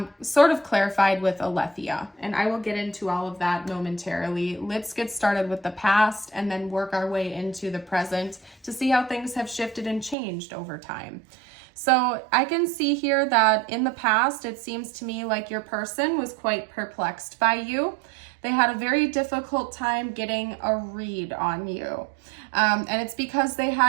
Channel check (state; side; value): drops out; left; at 10.2 s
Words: sort of clarified with Aletheia. And I will get into all of that momentarily. Let's get started with the past and then work our way into the present to see how things have shifted and changed over time. So I can see here that in the past, it seems to me like your person was quite perplexed by you. They had a very difficult time getting a read on you. And it's because they